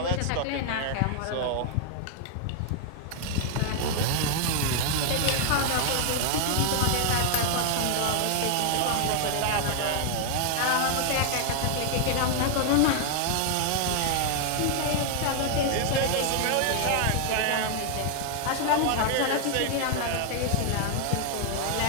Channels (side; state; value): both; different; correlation 0.00